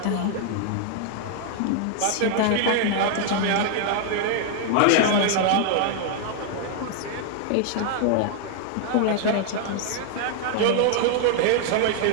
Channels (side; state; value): both; different; correlation 0.00